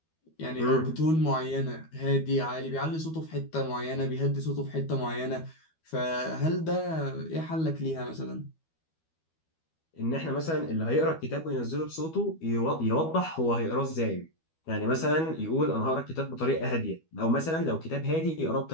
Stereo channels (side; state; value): right; late; 12 ms